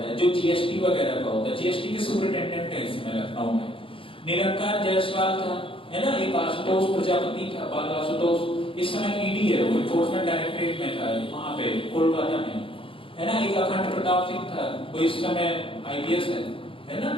है, जो GST वगैरह का होता है। GST के सुपरिटेंडेंट है इसमें लखनऊ में। निरंकार जायसवाल था, है ना, एक आशुतोष प्रजापति था, बाल आशुतोष, इस समय ED है, वो एनफोर्समेंट डायरेक्टरेट में था वहां पे कोलकाता में, है ना। एक अखंड प्रताप सिंह था, वो इस समय IPS है ना,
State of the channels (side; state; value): right; late; 0.26 ms